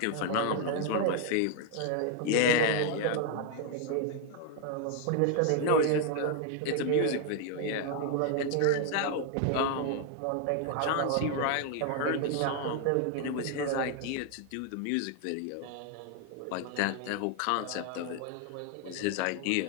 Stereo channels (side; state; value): both; different; correlation 0.00